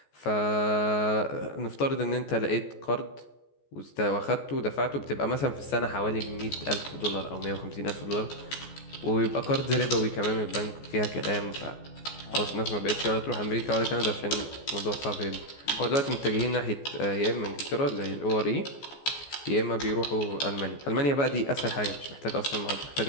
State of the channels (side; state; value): right; late; 14 ms